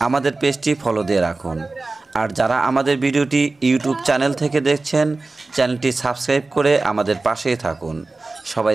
আমাদের পেজটি ফলো দিয়ে রাখুন। আর যারা আমাদের ভিডিওটি ইউটিউব চ্যানেল থেকে দেখছেন, চ্যানেলটি সাবস্ক্রাইব করে আমাদের পাশেই থাকুন। সবাই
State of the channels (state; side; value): quieter; left; 3.5 dB